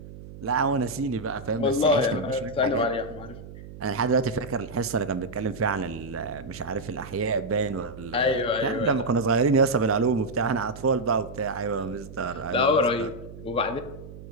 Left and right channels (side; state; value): right; noise; hum, 15 dB below the sound